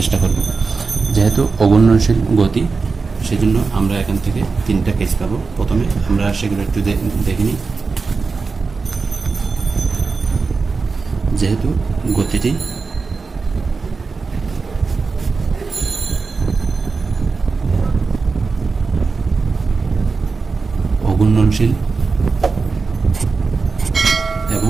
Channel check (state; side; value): quieter; left; 4.5 dB